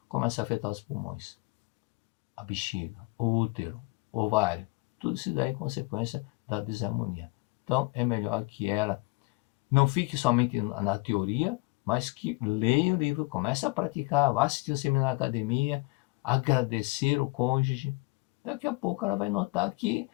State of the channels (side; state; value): right; quieter; 25.6 dB